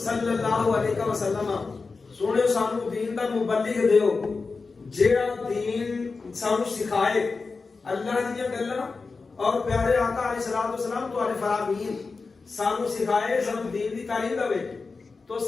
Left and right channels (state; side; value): quieter; right; 4.3 dB